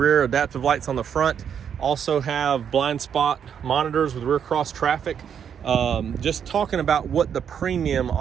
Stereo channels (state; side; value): quieter; left; 8.1 dB